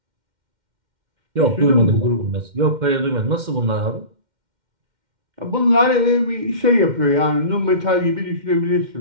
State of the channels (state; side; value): late; left; 2.1 ms